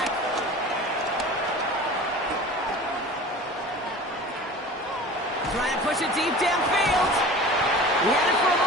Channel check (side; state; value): both; normal; correlation 0.39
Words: Trying to push it deep downfield. He had it for a